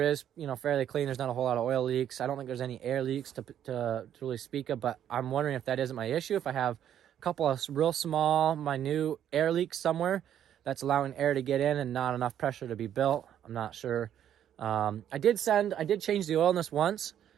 is fairly clean. There's not a whole lot of oil leaks. I don't think there's any air leaks to really speak of, but I'm wondering if that isn't my issue. If I have a couple of real small, minute air leaks somewhere that's allowing air to get in and not enough pressure to be built, I'm not sure. I did change the oil in this once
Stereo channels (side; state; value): left; quieter; 10.2 dB